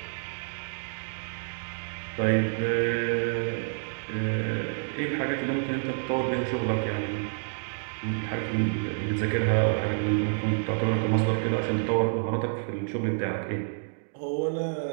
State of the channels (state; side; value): silent; left; digital silence